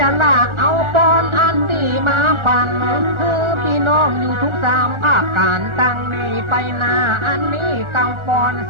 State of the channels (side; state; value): left; late; 1.4 ms